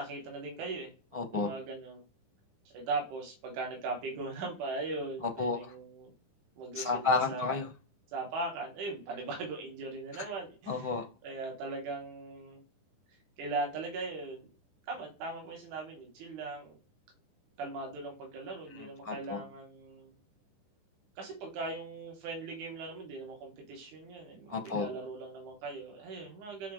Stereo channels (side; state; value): left; late; 9.9 ms